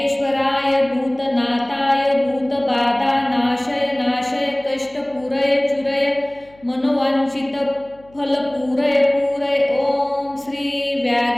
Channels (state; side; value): noise; left; hum, 28 dB below the sound